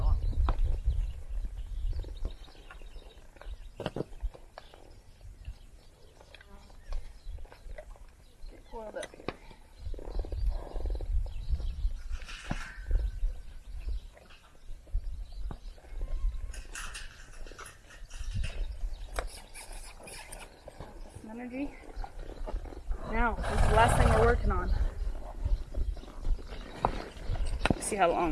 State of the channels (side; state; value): both; identical; correlation 1.00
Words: Get coiled up here. Energy. Now, this is the last thing we're working on. Let's see how